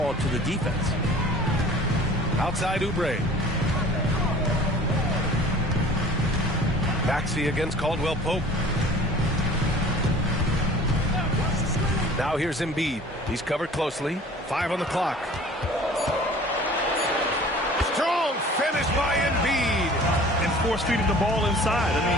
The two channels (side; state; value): both; normal; correlation 0.46